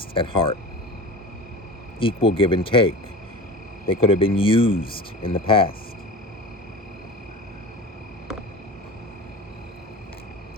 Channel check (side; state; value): both; normal; correlation 0.34